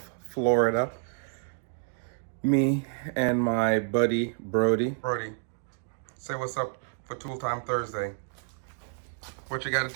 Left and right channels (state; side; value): silent; left; 58 dB below the other